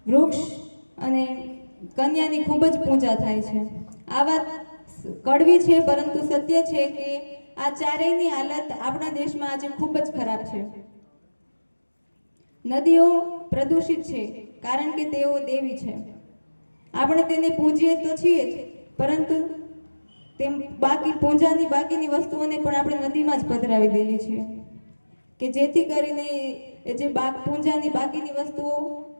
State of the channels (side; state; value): both; inverted; correlation -1.00